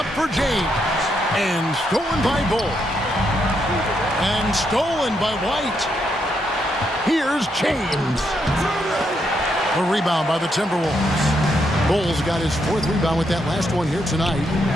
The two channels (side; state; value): both; normal; correlation 0.78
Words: for James. And stolen by Bull. And stolen by White. Here's James. A rebound by the Timberwolves. Bull's got his 4th rebound with that last one here tonight.